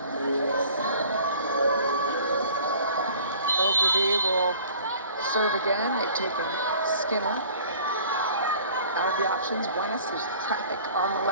Ogilvy will serve again. They've taken Skinner out of the options. Buenas, there's traffic on the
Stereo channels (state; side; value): inverted; both; correlation -0.49